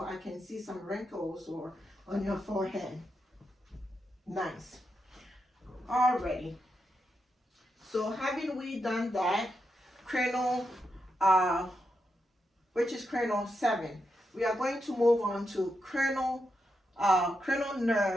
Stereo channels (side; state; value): both; normal; correlation 0.85